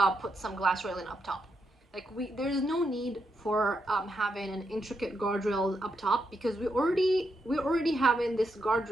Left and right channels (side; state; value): both; normal; correlation 0.82